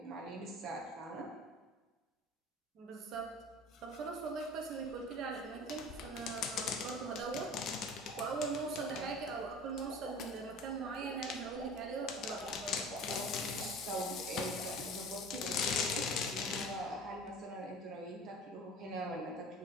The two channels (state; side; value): normal; both; correlation 0.40